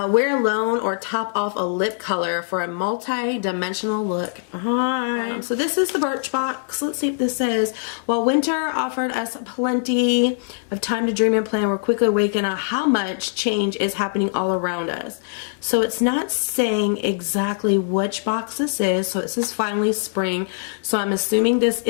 alone or top off a lip color for a multi-dimensional look. Alright, so this is the Birchbox. Let's see what this says. While winter offered us plenty of time to dream and plan, we're quickly awakened on how much change is happening all around us. So it's not saying exactly which box this is. So it says finally spring. So I'm assuming this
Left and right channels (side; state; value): right; silent; 58 dB below the other